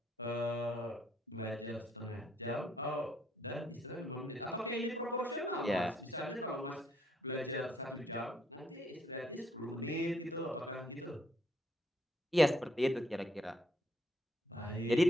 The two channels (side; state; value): both; normal; correlation 0.71